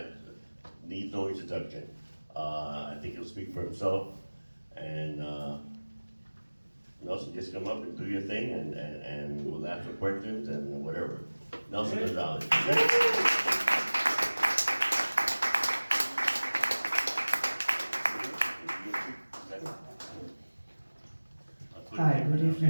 needs no introduction. I think he'll speak for himself. And Nelson, just come up and do your thing, and we'll ask for questions and whatever. Nelson Gonzalez. Hi, good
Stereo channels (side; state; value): both; inverted; correlation -1.00